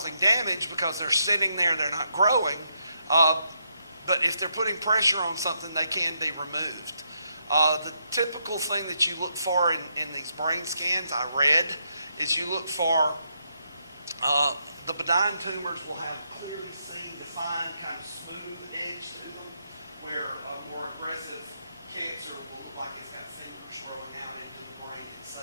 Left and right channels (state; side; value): inverted; both; correlation -0.78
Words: damage because they're sitting there, they're not growing. But if they're putting pressure on something, they can be removed. The typical thing that you look for in these brain scans, I read, is you look for the benign tumors will have clearly seen, defined, kind of smooth edge to them, where a more aggressive cancer will look like it's got fingers growing out into the brain